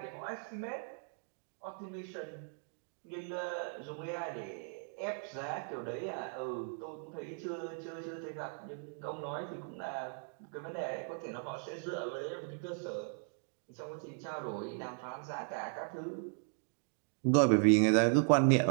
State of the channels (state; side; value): silent; left; 53 dB below the other